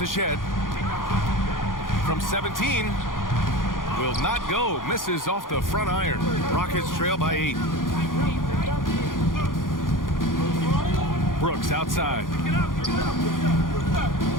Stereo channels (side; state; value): right; late; 0.90 ms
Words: Shed. From 17. Will not go. Misses off the front iron. Rockets trail by 8. Brooks outside.